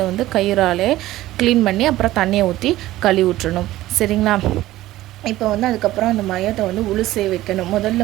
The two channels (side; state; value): left; quieter; 15.8 dB